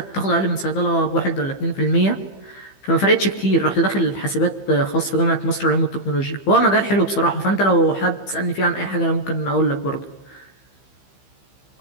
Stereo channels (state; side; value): late; right; 15 ms